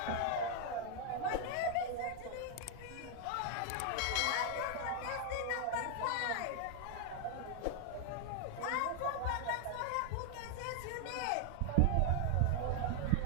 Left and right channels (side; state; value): both; different; correlation 0.00